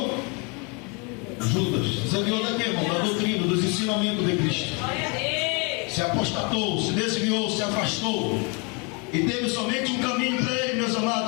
Judas. Se desviou da quê, irmão? Da doutrina, dos ensinamentos de Cristo. Se apostatou, se desviou, se afastou. E teve somente um caminho para ele, meus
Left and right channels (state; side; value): quieter; right; 32.5 dB